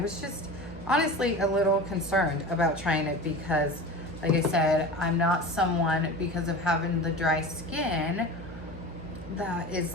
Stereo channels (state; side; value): noise; right; hum, 14 dB below the sound